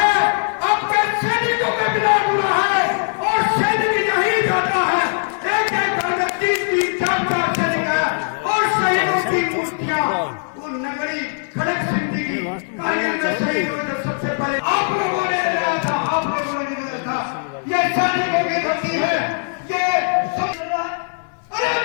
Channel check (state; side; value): silent; right; digital silence